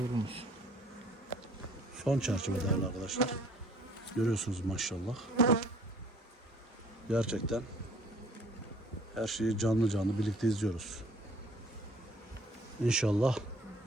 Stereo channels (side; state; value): both; normal; correlation 0.56